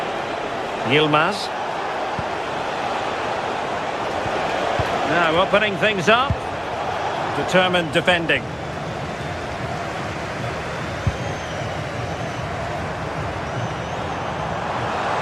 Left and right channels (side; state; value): both; identical; correlation 1.00